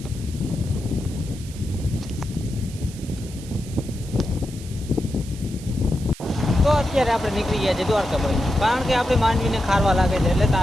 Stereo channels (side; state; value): right; noise; hiss, 18 dB below the sound